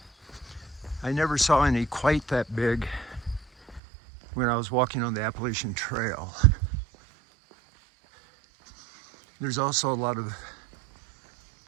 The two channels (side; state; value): left; drops out; at 3.8 s